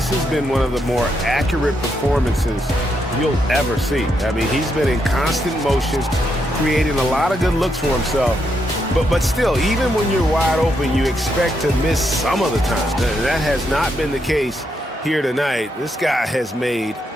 has been one of the more accurate performances you'll ever see. I mean, he's been in constant motion, creating a lot of good looks for himself. But still, even when you're wide open, you expect to miss some of the time. That has not been the case here tonight. This guy has made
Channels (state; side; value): normal; both; correlation 0.79